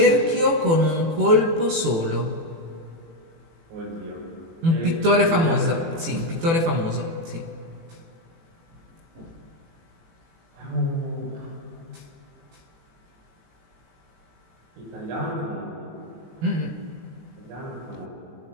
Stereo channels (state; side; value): late; left; 18 ms